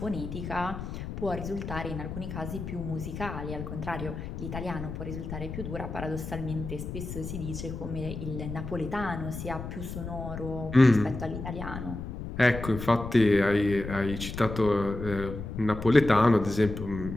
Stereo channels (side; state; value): left; noise; rumble, 7 dB below the sound